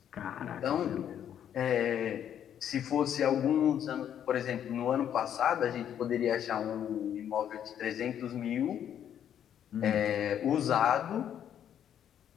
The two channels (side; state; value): right; quieter; 9.7 dB